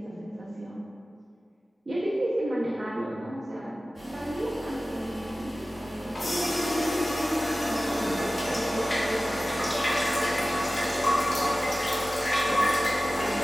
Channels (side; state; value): both; normal; correlation 0.96